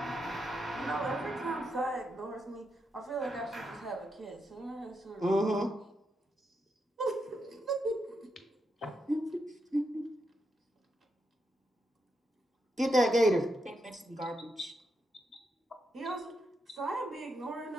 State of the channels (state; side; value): normal; both; correlation 0.83